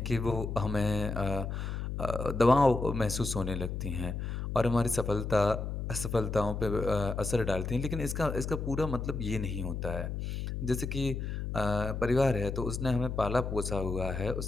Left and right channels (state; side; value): noise; left; hum, 4 dB below the sound